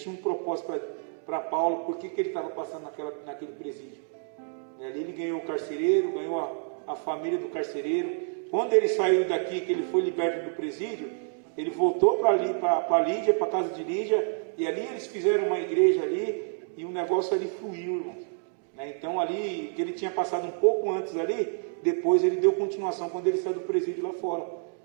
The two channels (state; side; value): silent; left; 59 dB below the other